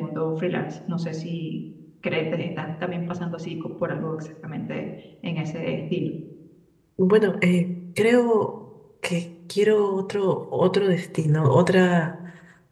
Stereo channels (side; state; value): both; identical; correlation 1.00